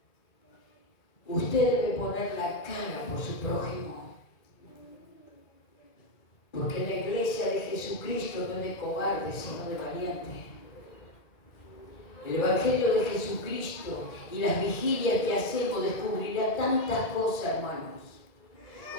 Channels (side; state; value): right; late; 2.1 ms